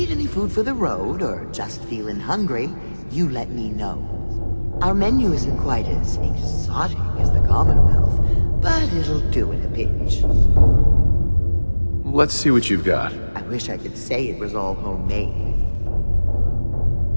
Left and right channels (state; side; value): inverted; both; correlation -1.00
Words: any food for the road, or just feeling hungry, you let me know. Our menu isn't quite as exotic as the Commonwealth, but it'll do in a pinch. Let's see what you've got. I wish I could say it was all homemade.